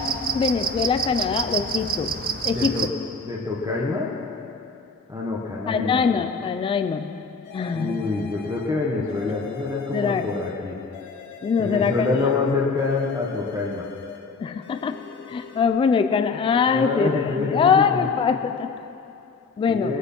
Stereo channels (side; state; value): right; quieter; 4.2 dB